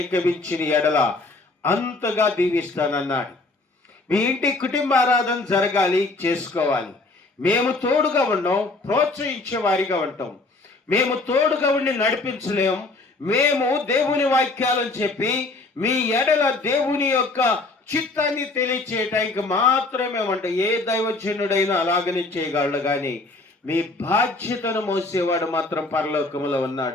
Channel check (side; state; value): right; quieter; 3.3 dB